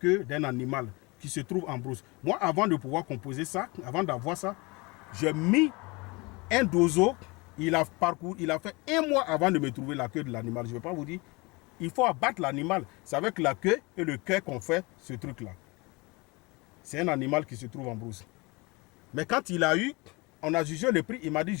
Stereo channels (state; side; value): quieter; right; 25.9 dB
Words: d'un animal qui se trouve en brousse. Moi, avant de pouvoir composer ça, avant d'avoir ça, j'ai mis un dozo. Il a fait 1 mois avant de me trouver la queue de l'animal. Je ne vais pas vous dire. Il faut abattre l'animal. C'est avec la queue et le cœur qu'on fait ce truc-là. C'est un animal qui se trouve en brousse. Mais quand il a eu, on a jugé le prix. Il m'a dit,